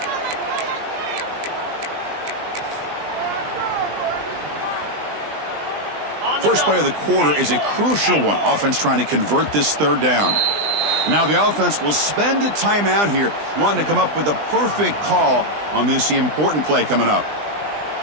First play of the quarter is a crucial one. Offense trying to convert this third down. Now the offense will spend a timeout here, wanting to come up with a perfect call on this important play coming up.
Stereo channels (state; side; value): late; left; 20 ms